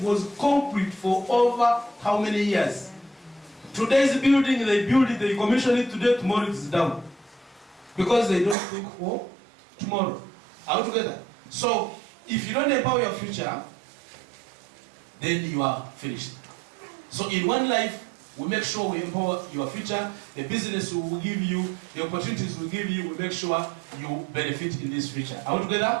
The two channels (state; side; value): drops out; left; at 8.6 s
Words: was concrete for over how many years? Today's building, they build it, they commission it today, tomorrow it is down. Because they don't think for tomorrow. Are we together? So, if you don't empower your future, then you are finished. So in one life, we make sure we empower your future. The business will give you, the opportunities will give you, we make sure you benefit in this future. Are we